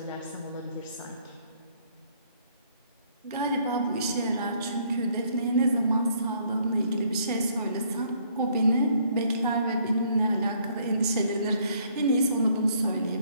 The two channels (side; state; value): both; inverted; correlation -0.65